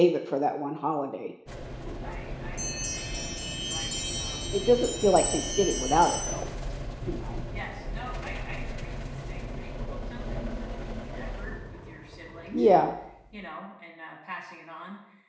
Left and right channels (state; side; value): identical; both; correlation 1.00